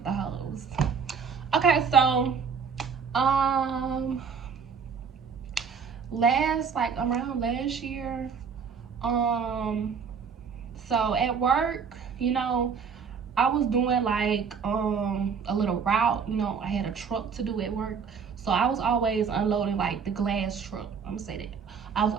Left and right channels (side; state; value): left; quieter; 6.2 dB